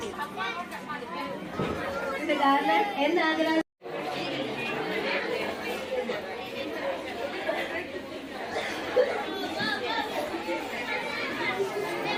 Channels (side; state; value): both; identical; correlation 1.00